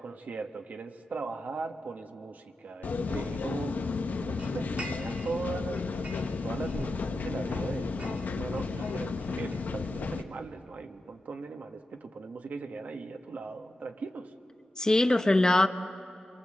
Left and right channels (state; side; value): normal; both; correlation 0.90